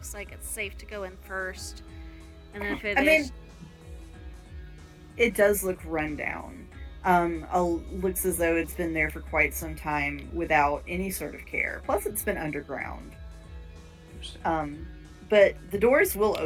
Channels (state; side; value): identical; both; correlation 1.00